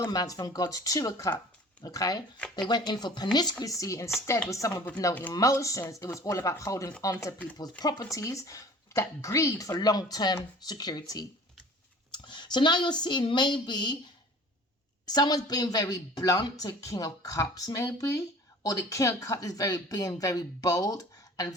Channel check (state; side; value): normal; both; correlation 0.46